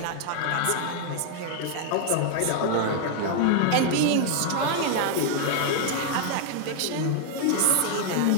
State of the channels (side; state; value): both; different; correlation 0.00